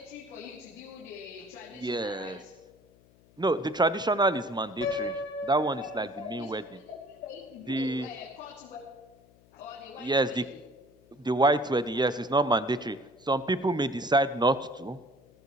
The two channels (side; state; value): left; noise; hum, 29 dB below the sound